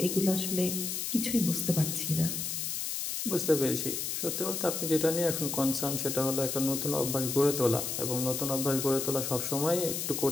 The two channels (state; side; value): noise; left; hiss, 3 dB below the sound